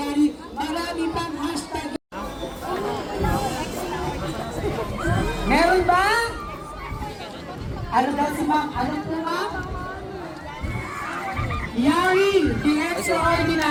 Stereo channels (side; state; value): both; identical; correlation 1.00